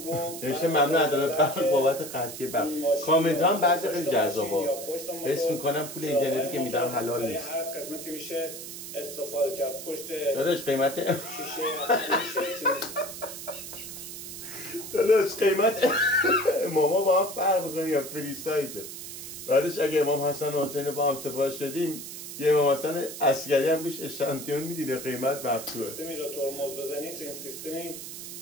رو نوشته ممنون عدالت برق بابت قطعی برق. کامنت هم بعضی خیلی جذابه. حس میکنم پول اینترنتی که میدم حلال نیست. هر قسمتی میشه استفاده کرد. پشت داداش قیمت شیشه داداش قیمت ماما با هم فرق میکنه یا فری سایزه. بعدش اگه امام حسن و حسین با هم سفارش دادیم یه امام حسن عسکری هم روش اشانتیون میدیده قیمت مقطوعه. سیستمی رو ترمز بزنید این سیستمی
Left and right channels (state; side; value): noise; right; hiss, 10 dB below the sound